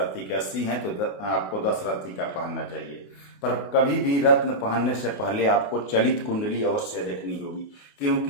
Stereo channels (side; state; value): right; late; 28 ms